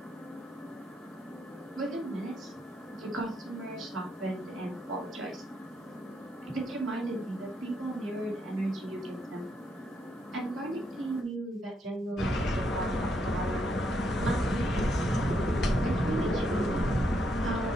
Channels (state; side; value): normal; both; correlation 0.77